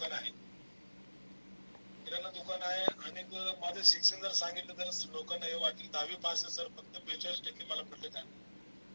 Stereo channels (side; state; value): both; inverted; correlation -1.00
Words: आहे. किराणा दुकान आहे. आणि माझं शिक्षण जर सांगितलं तर लोकांना हे वाटेल 10वी पास आहे सर, फक्त 42% मला पडले काय.